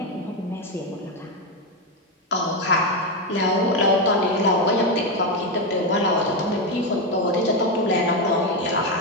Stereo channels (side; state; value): both; normal; correlation 0.09